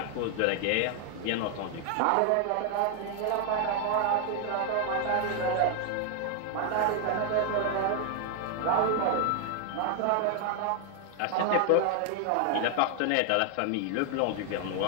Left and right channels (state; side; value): different; both; correlation 0.00